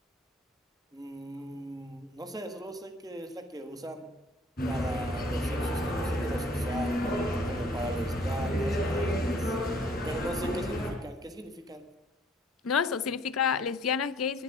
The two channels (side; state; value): both; normal; correlation 0.57